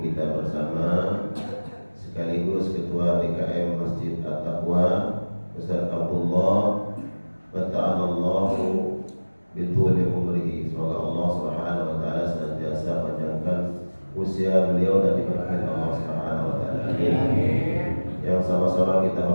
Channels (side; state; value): both; inverted; correlation -1.00